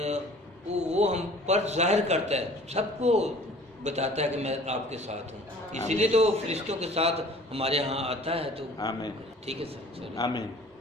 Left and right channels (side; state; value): both; normal; correlation 0.49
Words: वो हम पर जाहिर करता है, सबको बताता है कि मैं आपके साथ हूँ। इसीलिए तो फरिश्तों के साथ हमारे यहाँ आता है। तो आमीन। ठीक है सर। आमीन।